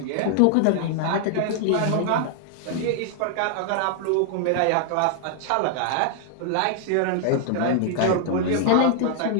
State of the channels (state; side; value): different; both; correlation 0.00